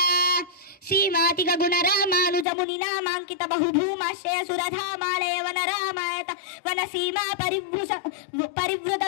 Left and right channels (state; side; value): drops out; right; at 2.5 s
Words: శ్రీమాతిగ గుణ రామానుజముని నామాంకిత బహుభూమాశ్రయ సురధామాలయ వన రామాయత వన సీమా పరివృత